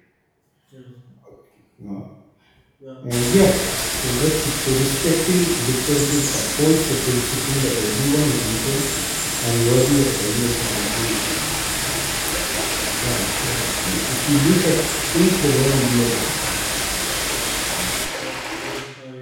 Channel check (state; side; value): identical; both; correlation 1.00